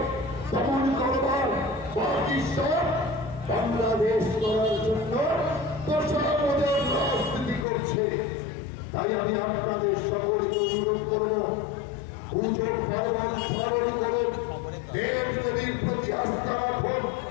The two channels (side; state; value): right; drops out; at 7.7 s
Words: দমন করবার, বাকি সব বাংলাদেশ করার জন্য দশামদের রাজনীতি করছে। তাই আমি আপনাদের সকলকে অনুরোধ করব, পুজোর পার্বণ স্মরণ করুন, দেব দেবীর প্রতি আস্থা রাখুন,